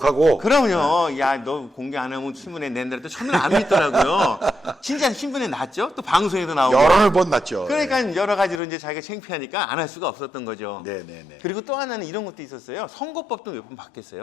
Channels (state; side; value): drops out; right; at 8.6 s